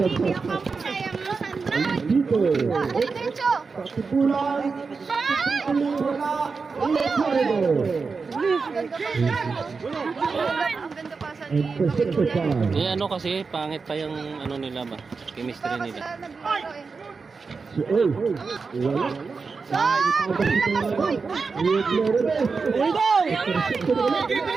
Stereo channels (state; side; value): quieter; left; 4.7 dB